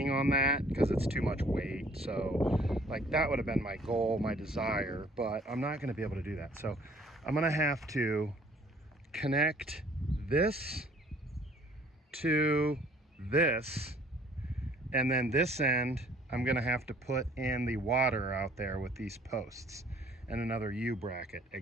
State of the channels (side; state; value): both; normal; correlation 0.57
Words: on that because it's too much weight. So like that would have been my goal, my desire, but I'm not going to be able to do that. So I'm going to have to connect this to this, and then this end I'm going to have to put in the water out there with these posts and another U bracket,